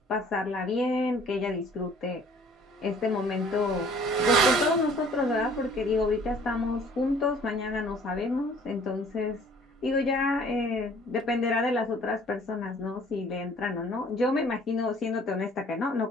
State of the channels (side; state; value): both; normal; correlation 0.54